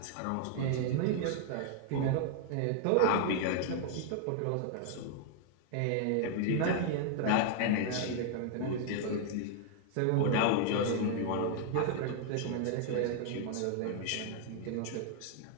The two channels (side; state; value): both; different; correlation 0.00